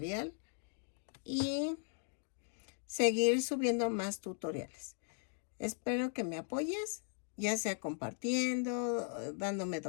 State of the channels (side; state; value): right; silent; 52 dB below the other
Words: y seguir subiendo más tutoriales. Espero que me apoyes, ya sea compartiendo, dándome